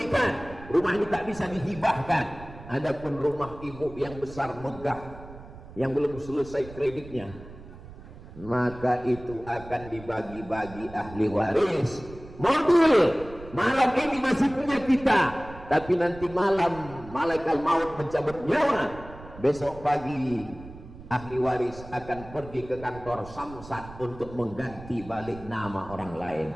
rumah ini tak bisa dihibahkan. Adapun rumah ibu yang besar megah, yang belum selesai kreditnya, maka itu akan dibagi-bagi ahli waris. Mobil malam ini masih punya kita, tapi nanti malam malaikat maut mencabut nyawa. Besok pagi ahli waris akan pergi ke kantor Samsat untuk mengganti balik nama orang lain.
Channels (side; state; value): right; noise; rumble, 16 dB below the sound